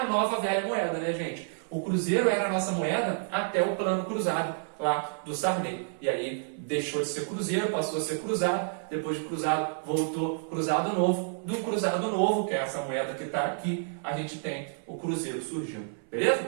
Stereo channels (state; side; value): silent; left; 58 dB below the other